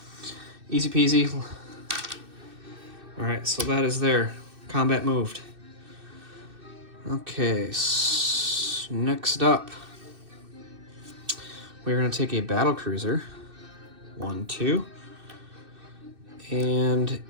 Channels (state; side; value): late; left; 2.6 ms